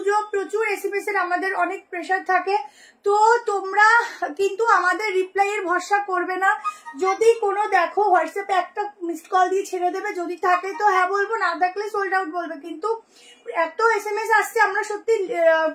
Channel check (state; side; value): identical; both; correlation 1.00